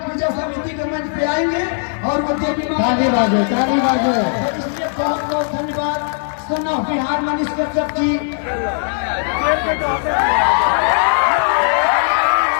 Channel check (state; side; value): silent; right; digital silence